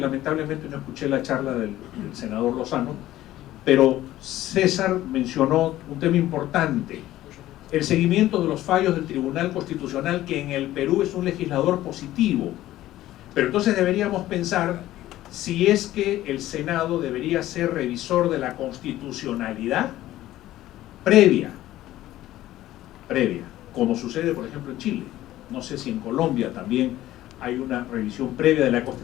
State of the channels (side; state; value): right; quieter; 14.7 dB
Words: no escuché la charla del senador Lozano, pero César mencionó un tema importante: el seguimiento de los fallos del Tribunal Constitucional, que en el Perú es un legislador positivo. Pero entonces deberíamos pensar si es que el Senado debería ser revisor de la constitucionalidad previa, como sucede por ejemplo en Chile. No sé si en Colombia también hay una revisión previa de la